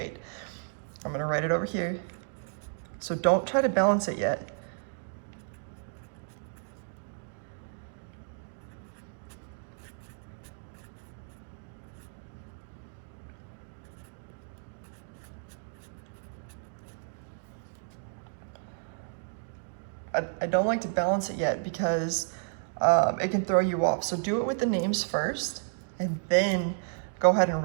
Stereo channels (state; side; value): silent; left; digital silence